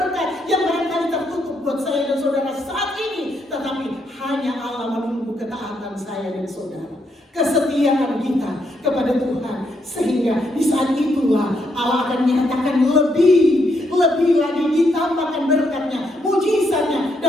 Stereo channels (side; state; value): both; normal; correlation 0.77